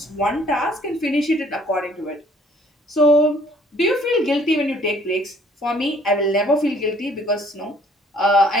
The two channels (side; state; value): both; normal; correlation 0.59